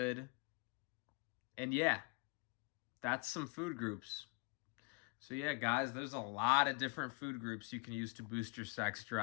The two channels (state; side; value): quieter; right; 29.3 dB